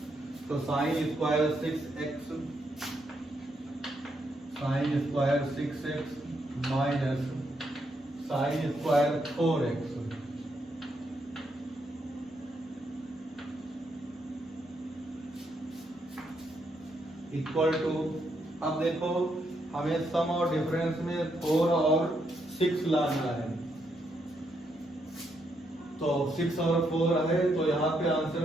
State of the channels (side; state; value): both; normal; correlation 0.78